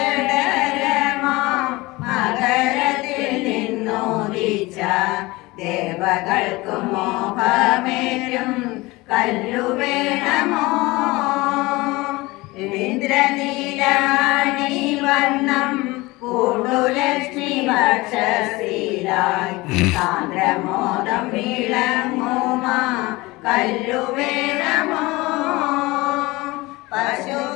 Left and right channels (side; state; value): right; quieter; 21.7 dB